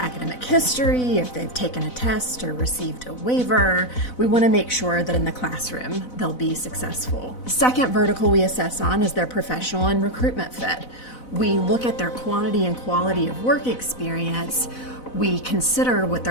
history, if they've taken a test or received a waiver. We want to make sure that in the classroom they'll be successful. Second vertical we assess on is their professional and recruitment fit. We look at their quantity and quality of work experience. We consider what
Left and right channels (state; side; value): late; right; 4.0 ms